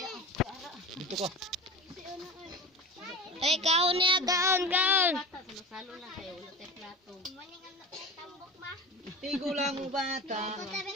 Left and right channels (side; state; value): both; normal; correlation 0.31